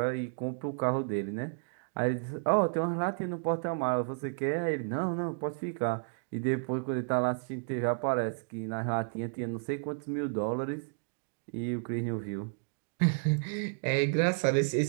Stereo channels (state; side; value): silent; left; digital silence